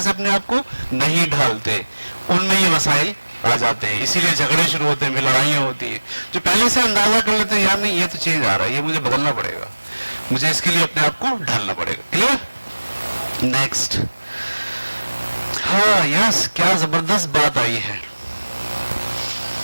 سے اپنے آپ کو نہیں ڈھالتے. ان میں یہ مسائل آ جاتے ہیں, اسی لیے جھگڑے شروع ہوتے ہیں, لڑائیاں ہوتی ہیں. جو پہلے سے اندازہ کر لیتے ہیں یار نہیں یہ تو چیز آ رہا ہے, یہ مجھے بدلنا پڑے گا, مجھے اس کے لیے اپنے آپ کو ڈھالنا پڑے گا. کلیئر؟ نیکسٹ. ہاں یس, کیا زبردست بات آئی ہے,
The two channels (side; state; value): both; inverted; correlation -1.00